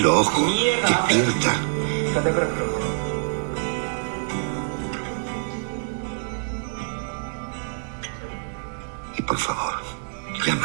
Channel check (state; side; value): silent; left; digital silence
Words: ojos. Despierta. Y por favor,